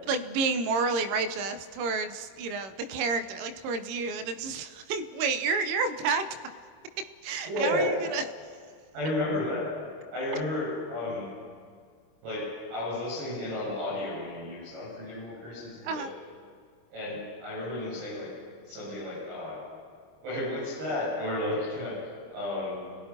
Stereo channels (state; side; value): late; left; 26 ms